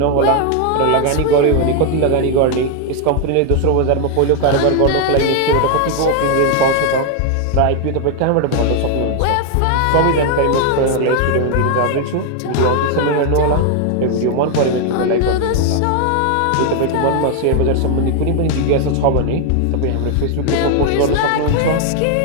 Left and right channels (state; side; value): different; both; correlation 0.01